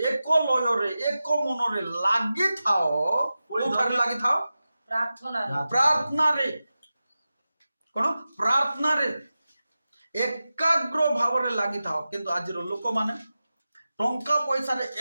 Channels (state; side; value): inverted; both; correlation -0.94